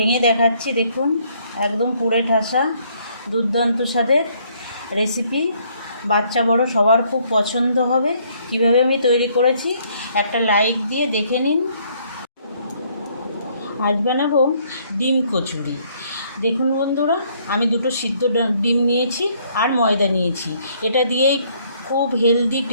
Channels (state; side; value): inverted; both; correlation -0.66